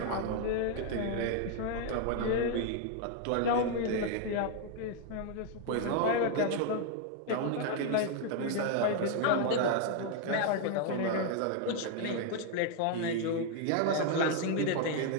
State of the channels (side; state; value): both; different; correlation 0.00